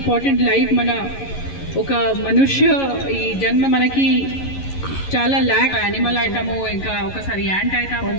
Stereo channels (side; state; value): right; late; 11 ms